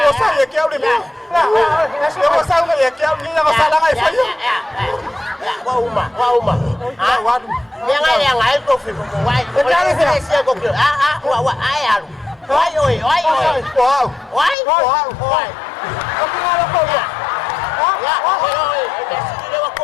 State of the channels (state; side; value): drops out; right; at 14.6 s